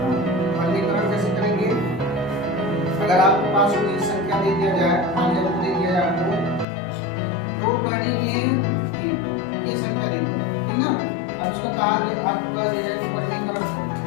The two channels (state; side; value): drops out; right; at 6.7 s